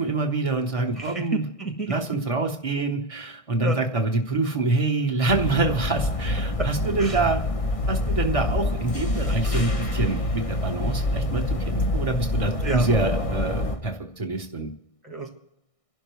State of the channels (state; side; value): late; right; 1.6 ms